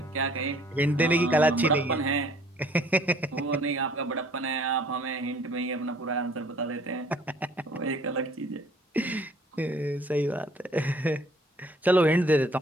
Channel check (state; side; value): normal; both; correlation 0.57